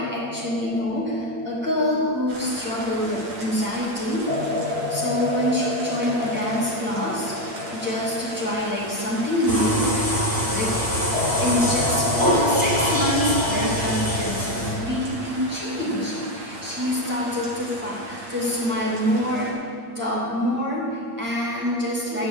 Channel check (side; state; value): left; late; 8.7 ms